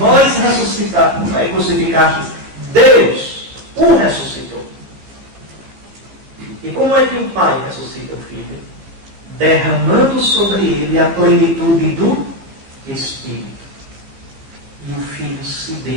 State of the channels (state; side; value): late; left; 15 ms